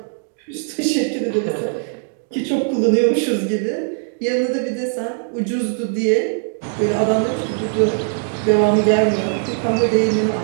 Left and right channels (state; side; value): silent; left; digital silence